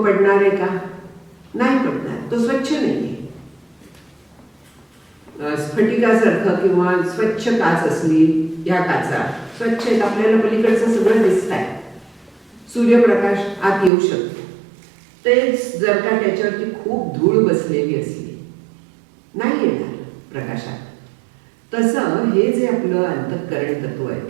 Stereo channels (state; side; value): drops out; left; at 13.9 s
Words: आहे का, नाही पडणार, तो स्वच्छ नाहीये. स्फटिकासारखं किंवा स्वच्छ काच असली, या काचा स्वच्छ आहेत, आपल्याला पलीकडचं सगळं दिसत आहे, सूर्यप्रकाश आत येऊ शकतो. तेच जर का त्याच्यावरती खूप धूळ बसलेली असली नाही येणार प्रकाशात. तसं हे जे आपलं अंतःकरण तत्व आहे